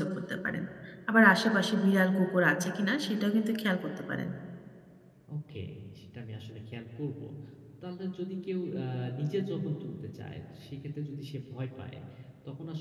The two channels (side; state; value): both; identical; correlation 1.00